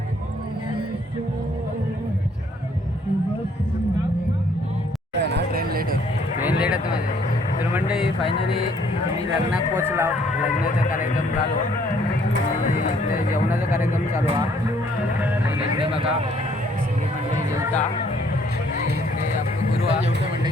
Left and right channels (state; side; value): normal; both; correlation 0.63